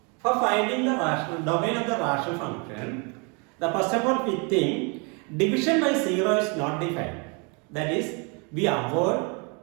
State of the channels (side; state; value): left; quieter; 33.2 dB